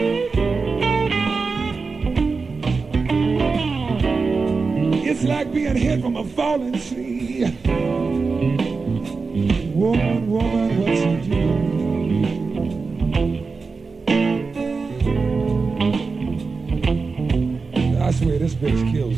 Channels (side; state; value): left; quieter; 4.5 dB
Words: It's like being hit from a falling tree. Woman, woman, what you do? I swear this bitch